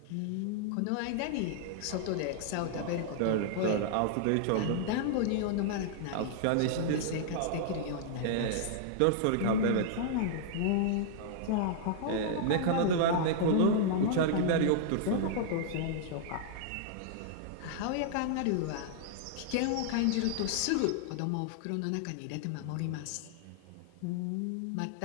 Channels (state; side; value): different; both; correlation -0.01